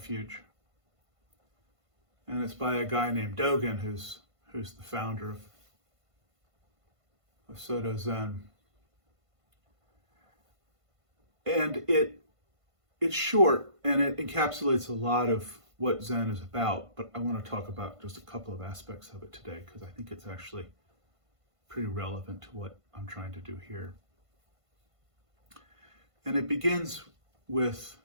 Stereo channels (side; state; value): left; late; 1.5 ms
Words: and it's by a guy named Dogen, who's the founder of Soto Zen. And it's short and it encapsulates a lot of what Zen is about, but I want to talk about just a couple of aspects of it today because I think it's actually pretty relevant to what I'm trying to do here. And it begins with,